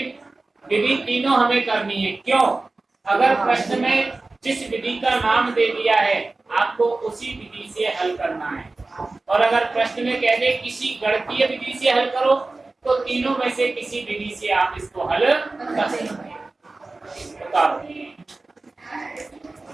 विधि तीनों हमें करनी है। क्यों? अगर प्रश्न में जिस विधि का नाम दे दिया है आपको उसी विधि से हल करना है, और अगर प्रश्न में कह दे किसी गणितीय विधि से हल करो तो तीनों में से किसी विधि से आप इसको हल कर सकते हैं।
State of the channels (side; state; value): left; quieter; 3.3 dB